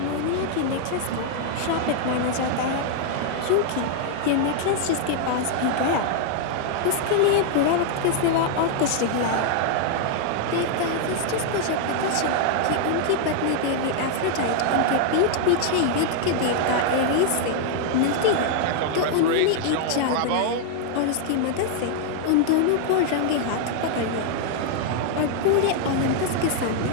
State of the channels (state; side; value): different; both; correlation 0.00